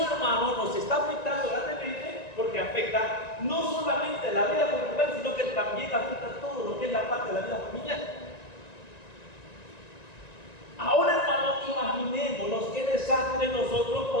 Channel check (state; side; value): late; right; 1.9 ms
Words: hermano, nos está afectando grandemente, porque afecta no solamente la vida conjugal, sino que también afecta todo lo que es la parte de la vida familiar. Ahora, hermano, imaginémonos qué desastre nosotros